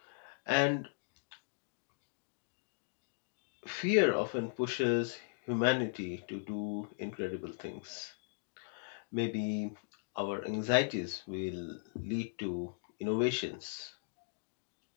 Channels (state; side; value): silent; right; digital silence